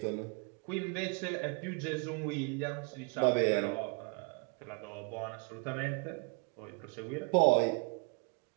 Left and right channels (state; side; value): quieter; left; 31.3 dB